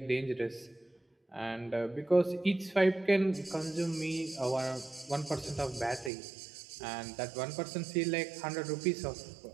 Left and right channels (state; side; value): drops out; left; at 6.1 s